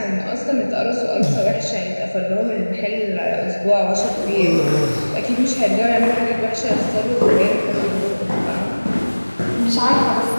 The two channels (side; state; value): both; inverted; correlation -1.00